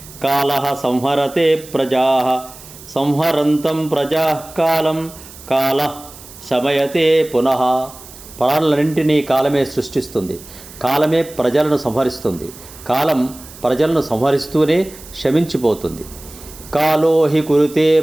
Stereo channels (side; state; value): right; noise; hiss, 18 dB below the sound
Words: కాలః సంహరతే ప్రజాః సంహరంతం ప్రజాః కాలం కాలః శమయతే పునః. ప్రాణులన్నింటినీ కాలమే సృష్టిస్తుంది, కాలమే ప్రజలను సంహరిస్తుంది, కాలం ప్రజలను సంహరిస్తూనే శమించిపోతుంది. కాలో హి కురుతే